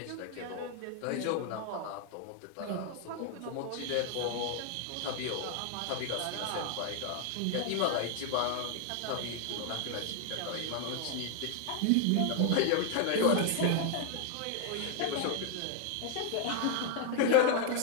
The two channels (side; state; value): both; different; correlation 0.00